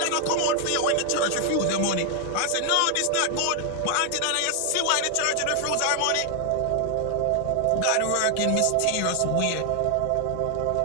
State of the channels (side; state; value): both; different; correlation 0.00